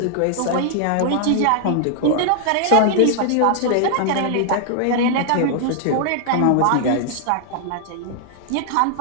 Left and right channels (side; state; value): both; different; correlation -0.01